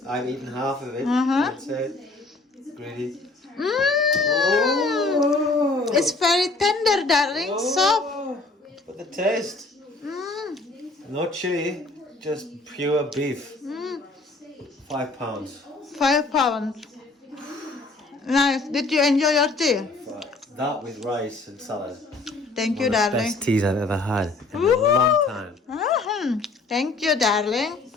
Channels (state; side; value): quieter; right; 3.3 dB